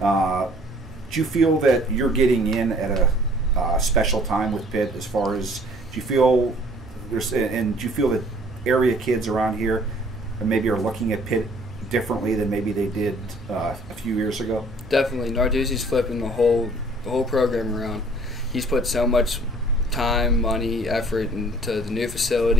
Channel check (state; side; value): normal; both; correlation 0.56